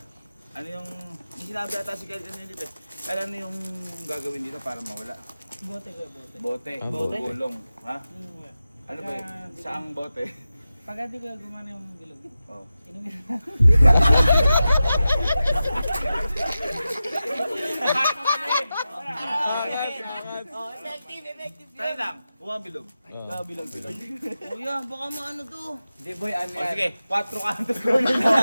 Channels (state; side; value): inverted; both; correlation -0.93